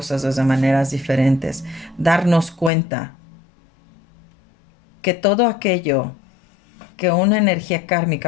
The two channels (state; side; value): drops out; right; at 2.7 s